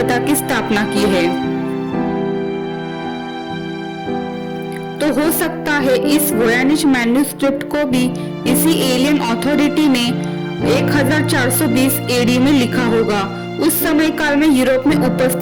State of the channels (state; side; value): identical; both; correlation 1.00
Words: की स्थापना की है। तो हो सकता है इस वोयानिच मैन्युस्क्रिप्ट को भी इसी एलियन अथॉरिटी ने 1420 एडी में लिखा होगा। उस समय काल में यूरोप में